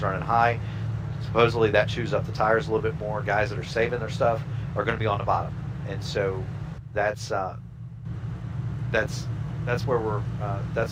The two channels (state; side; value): identical; both; correlation 1.00